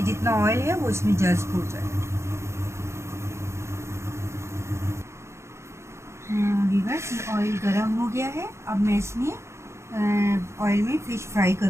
जितना ऑयल है वो इसमें जज्ब हो जाए। व्यूअर्स, ये ऑयल गर्म हो गया है। अब मैं इसमें ऑयल में फ़िश फ्राई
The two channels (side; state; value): left; late; 0.13 ms